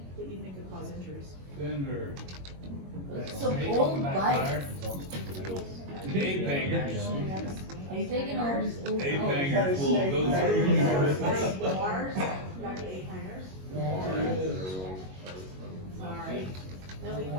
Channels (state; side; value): late; left; 21 ms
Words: that you think could cause injuries. Fender. It's so old bike. Ape hangers. I'm thinking all these old. Ape bikes. hangers will go through. Bars, got the eight hangers. Alright, then we